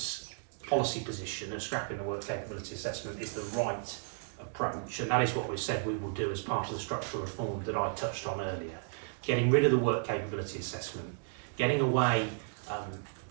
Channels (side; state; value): left; silent; 55 dB below the other